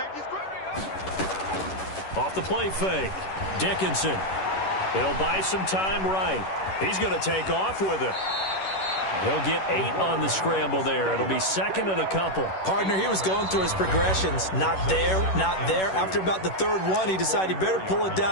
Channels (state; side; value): late; right; 11 ms